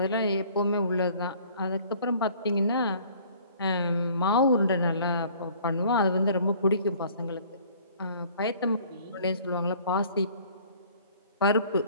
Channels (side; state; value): both; inverted; correlation -0.54